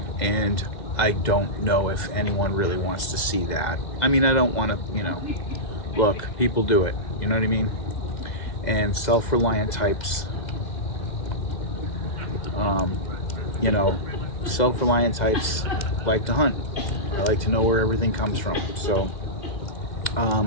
and I don't know if anyone really wants to see that. I mean, I don't want to, you know, look, people do it, you know what I mean? And self-reliant types, you know, self-reliant types like to hunt. I like to know where everything comes from. So,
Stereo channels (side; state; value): right; late; 2.0 ms